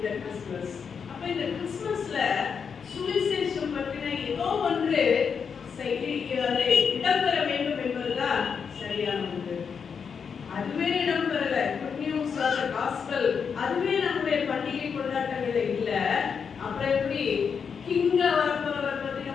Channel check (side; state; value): right; quieter; 6.4 dB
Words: கிறிஸ்துமஸ். அப்ப இந்த கிறிஸ்துமஸ்ல சுவிசேஷம் பற்றின ஏதோ ஒன்று இடம்பெற வேண்டும் என்பதுதான் சரியான ஒன்று. அதுவே இடம்பெறல. Good news of the gospel அதுவே நம்முடைய பண்டிகை கொண்டாட்டங்களே இல்ல. அப்புறம் எப்படி கிங்கா வரப்போறவரை பத்தி